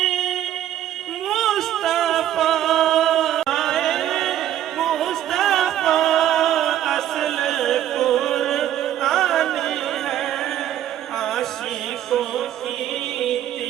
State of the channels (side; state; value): left; quieter; 11.7 dB